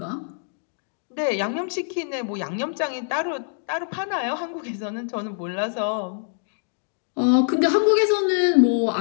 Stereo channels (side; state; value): right; silent; 62 dB below the other